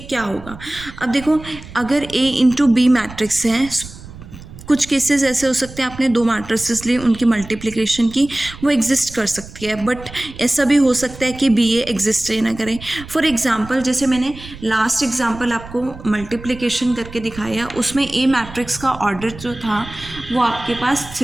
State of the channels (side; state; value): right; noise; rumble, 16 dB below the sound